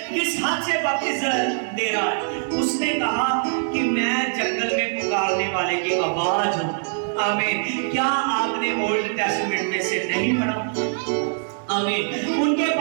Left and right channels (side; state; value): left; silent; digital silence